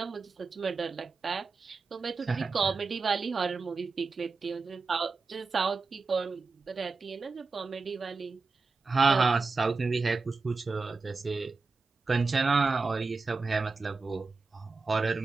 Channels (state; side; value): quieter; left; 4.2 dB